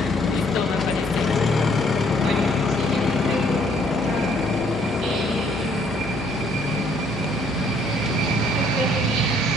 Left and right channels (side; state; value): both; normal; correlation 0.64